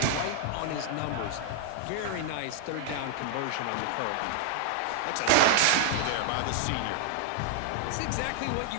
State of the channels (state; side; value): different; both; correlation 0.00